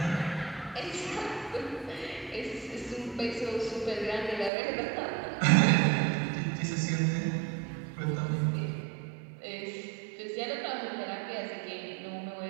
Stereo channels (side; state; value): left; drops out; at 4.5 s